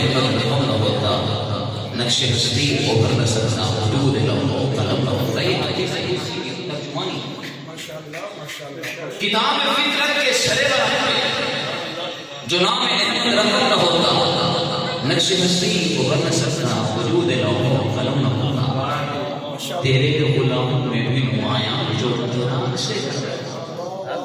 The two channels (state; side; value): identical; both; correlation 1.00